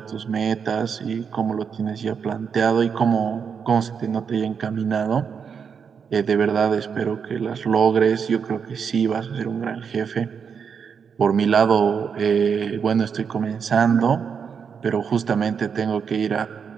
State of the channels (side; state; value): left; quieter; 6.6 dB